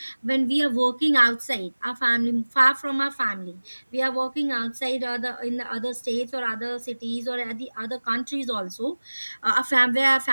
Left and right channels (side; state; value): both; inverted; correlation -1.00